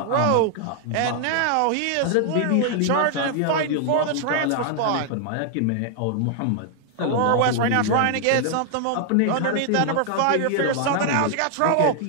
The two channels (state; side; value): different; both; correlation 0.00